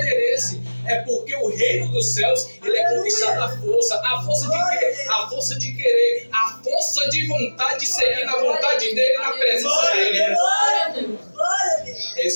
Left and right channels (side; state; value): both; inverted; correlation -1.00